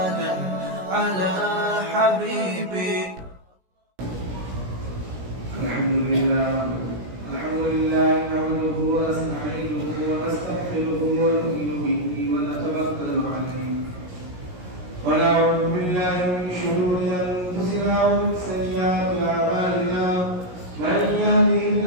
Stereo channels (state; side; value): late; left; 17 ms